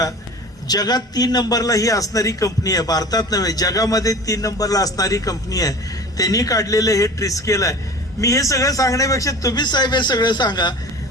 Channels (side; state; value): both; normal; correlation 0.39